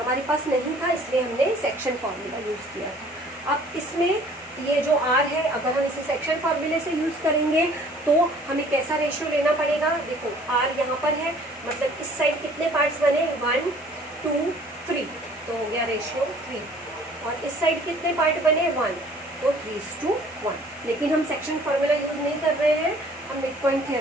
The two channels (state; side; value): normal; both; correlation 0.54